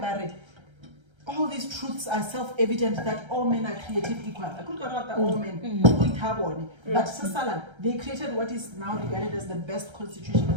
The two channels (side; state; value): left; late; 1.3 ms